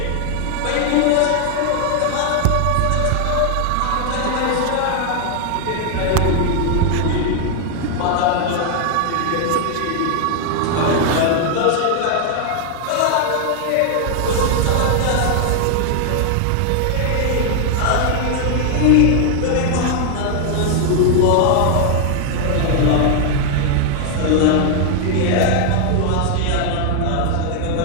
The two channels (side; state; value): both; different; correlation 0.00